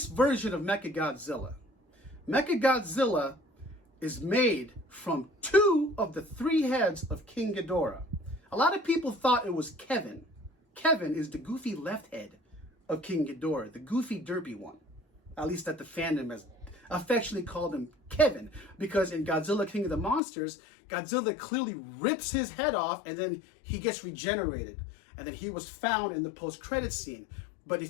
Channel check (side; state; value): right; drops out; at 20.2 s